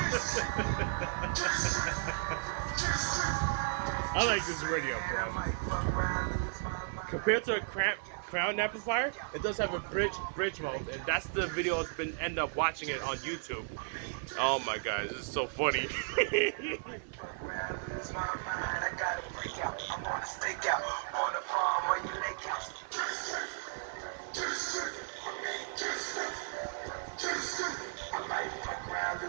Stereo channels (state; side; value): silent; left; 55 dB below the other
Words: I like this radio, bro. Compared to a crown amplifier, it does have a bridge mode, and that's the video I've been end up watching it on YouTube. Oh my god, this is so funny.